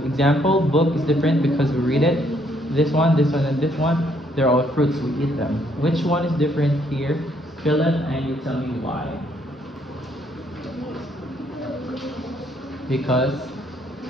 example book is different because we read it. This one, and this one, they're all fruits, we eat them. Which one is different here, Philip, and you tell me why. Because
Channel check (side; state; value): both; normal; correlation 0.69